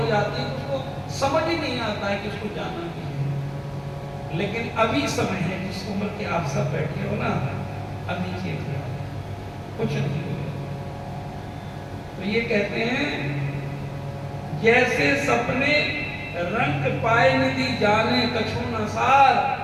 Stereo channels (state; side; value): identical; both; correlation 1.00